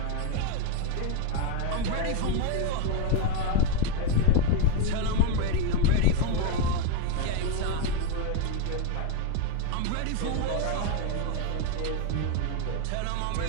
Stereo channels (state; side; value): different; both; correlation 0.02